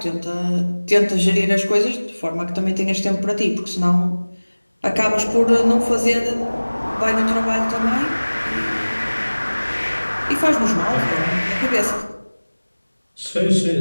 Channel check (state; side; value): inverted; both; correlation -1.00